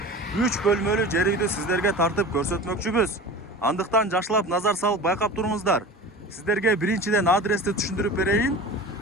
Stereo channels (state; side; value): normal; both; correlation 0.35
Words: 3 бөлмөлүү жер үйдү сиздерге тартып көрсөтмөкчүбүз. Андыктан жакшылап назар салып байкап туруңуздар. Сиздерге биринчиден адрести түшүндүрүп берейин.